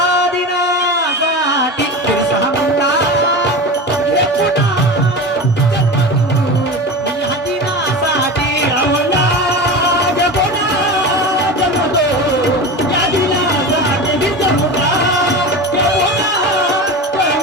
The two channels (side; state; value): both; normal; correlation 0.27